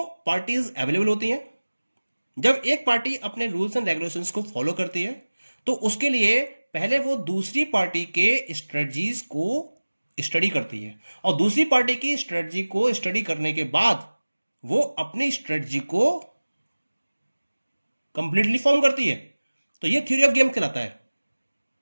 पार्टीज अवेलेबल होती हैं। जब एक पार्टी अपने रूल्स एंड रेगुलेशंस को फॉलो करती है तो उसके लिए पहले वो दूसरी पार्टी के स्ट्रेटजीज को स्टडी करती है और दूसरी पार्टी की स्ट्रेटजी को स्टडी करने के बाद वो अपनी स्ट्रेटजी को कंप्लीटली फॉर्म करती है। तो ये थ्योरी ऑफ गेम कहलाता है।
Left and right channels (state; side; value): inverted; both; correlation -1.00